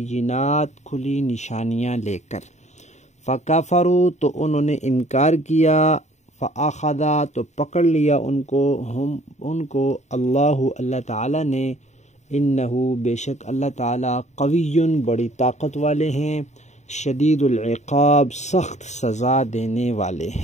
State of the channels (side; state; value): right; late; 0.34 ms